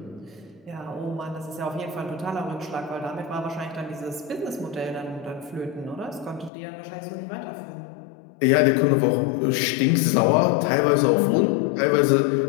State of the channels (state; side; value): drops out; right; at 6.5 s